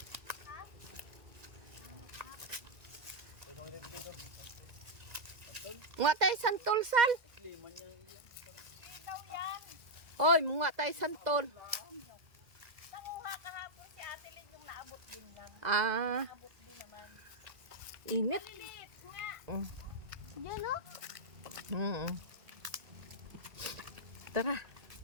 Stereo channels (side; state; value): left; late; 1.9 ms